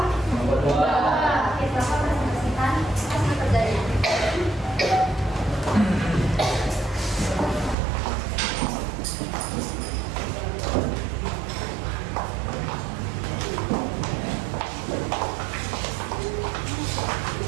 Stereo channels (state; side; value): drops out; left; at 7.8 s